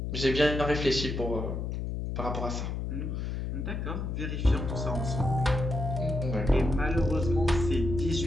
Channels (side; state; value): left; noise; hum, 3 dB below the sound